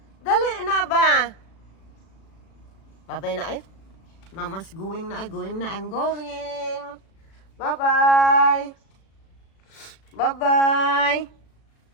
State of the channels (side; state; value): right; late; 36 ms